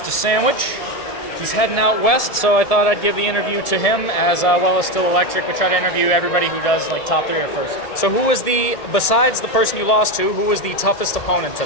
Sandwich. He's heading out west, so I thought I'd give the interview to him as well as Still Electric. We try to interview everybody who does like top 3 or first. So who was besides the person you lost to, who was the toughest opponent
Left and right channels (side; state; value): right; late; 1.7 ms